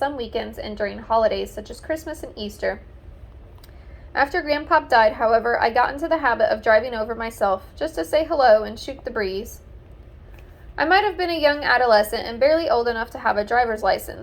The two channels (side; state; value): both; identical; correlation 1.00